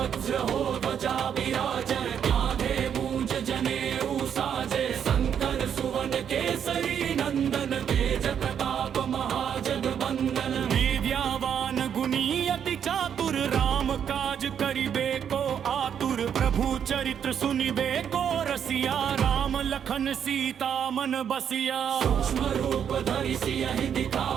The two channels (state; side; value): quieter; left; 8.4 dB